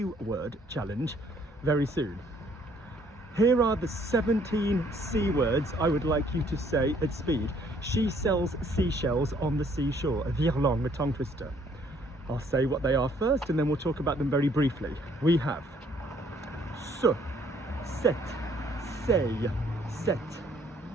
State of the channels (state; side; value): normal; both; correlation 0.63